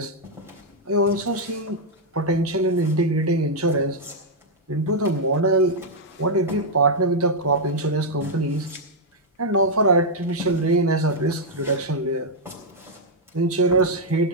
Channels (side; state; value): both; normal; correlation -0.03